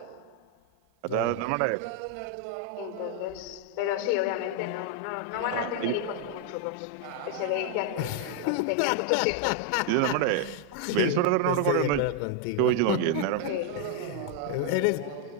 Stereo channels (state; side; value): different; both; correlation 0.00